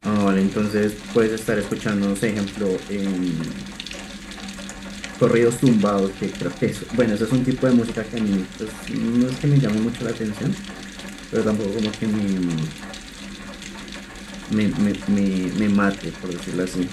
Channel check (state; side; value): identical; both; correlation 1.00